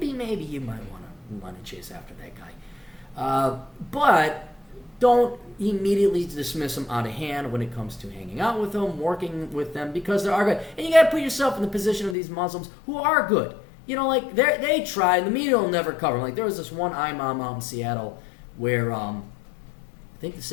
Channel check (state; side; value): drops out; right; at 12.2 s